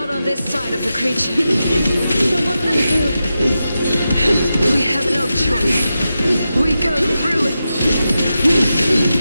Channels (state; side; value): inverted; both; correlation -0.90